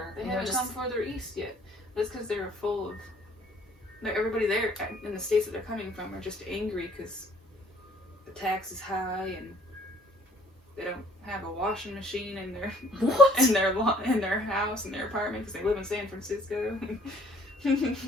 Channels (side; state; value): both; normal; correlation 0.58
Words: they haven't come further east yet. That's because they're full of. Everybody there in the states that they're coming from are just angry because the tax is high and they don't have a washing machine in their in their house, in their apartment, because they live in San Francisco.